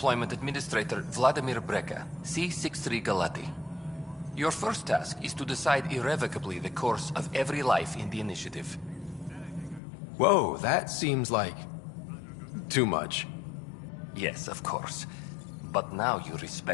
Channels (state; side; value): drops out; right; at 9.8 s